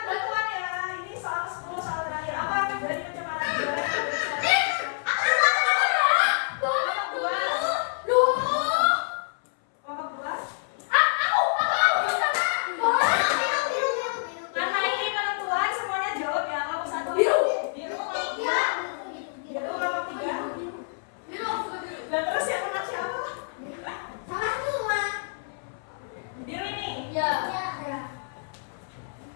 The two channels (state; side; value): silent; right; 60 dB below the other